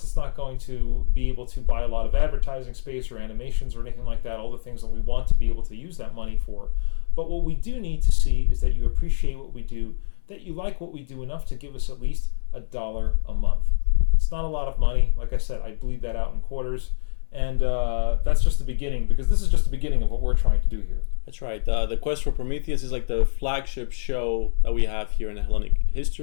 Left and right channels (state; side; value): silent; right; 63 dB below the other